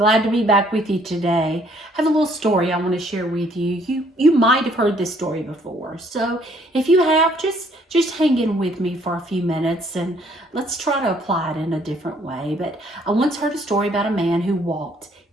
to be back with you today. I have a little story I want to share with you. You might have heard this story before, so if you have, just hang in with me for a few minutes, and let's try to apply it in a different way. But I once heard a story about a man who walked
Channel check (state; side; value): normal; both; correlation 0.63